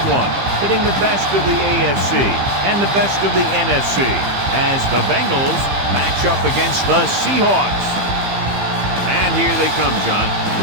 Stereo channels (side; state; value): left; late; 15 ms